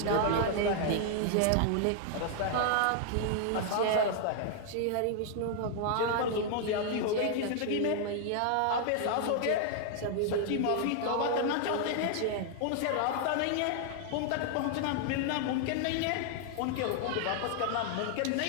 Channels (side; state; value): both; different; correlation 0.00